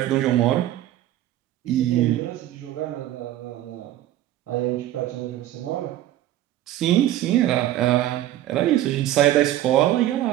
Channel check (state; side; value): quieter; left; 13.6 dB